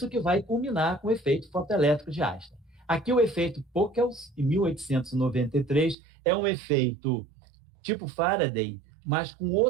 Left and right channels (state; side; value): drops out; left; at 6.0 s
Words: que vai culminar com o efeito fotoelétrico de Einstein. Aqui o efeito Pockels, em 1893, é um efeito tipo Faraday, mas com